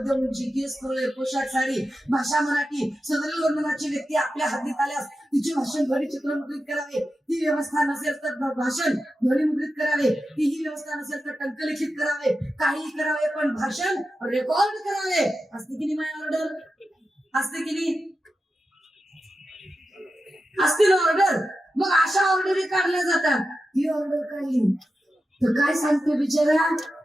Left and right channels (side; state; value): both; normal; correlation 0.91